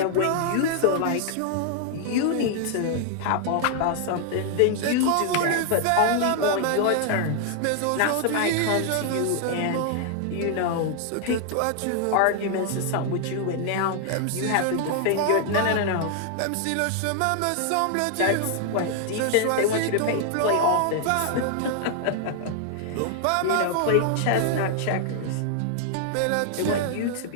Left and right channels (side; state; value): both; different; correlation 0.00